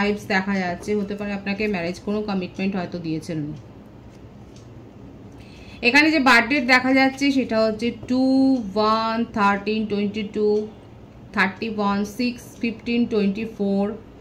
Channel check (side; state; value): both; identical; correlation 1.00